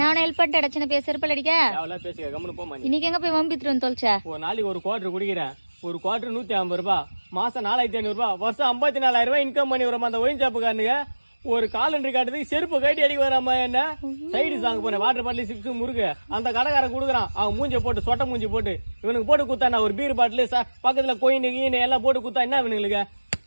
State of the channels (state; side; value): inverted; both; correlation -1.00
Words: ஹெல்ப் பண்ணிட்டு அடிச்சு பேச செருப்பால் அடிக்க அவ்வளோ பேசுக கம்முன்னு போமா. இன்னைக்கு எங்க போய் வம்பித்துட்டு வந்து தொலைச்சா? ஒரு நாளைக்கு ஒரு குவார்டர் குடிக்கிறேன். ஒரு குவார்டர் 150 ரூபாய், மாசம் 4500 ரூபாய், வருஷம் 54,000 ரூபாய் இன்கம் பண்ணி வரோம். அந்த ஒயின்சாப்புக்காரனுங்க ஒரு காலண்டர் காட்டுறதுக்கு செருப்பு கட்டி அடிக்க வராம என்ன சைடு சாங்க போனேன். வாட்டர் பாட்டில் சிப்ஸ் முறுக்கு அந்த கடைக்காரன் கொடுக்குறான். அவன் மூஞ்சி போட்டு சொட்டை மூஞ்சி போட்டு இவனுக்கு போட்டு குத்தா ஒரு பீர் பாட்டில் பக்கத்துல கோயின் கீனு எல்லாம் போட்டு குத்தா என்ன இவனுங்களுக்கு?